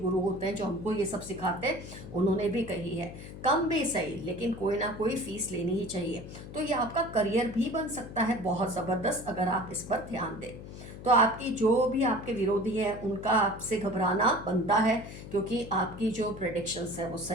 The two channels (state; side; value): noise; left; hum, 13 dB below the sound